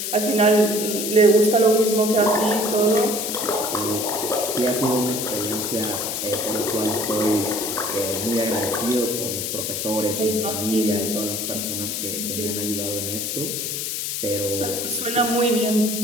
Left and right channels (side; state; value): left; noise; hiss, 3 dB below the sound